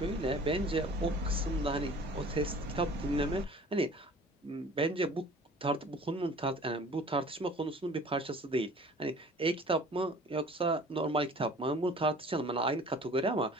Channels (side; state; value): both; normal; correlation 0.47